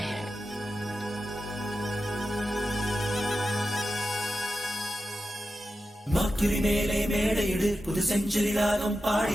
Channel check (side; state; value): both; normal; correlation 0.91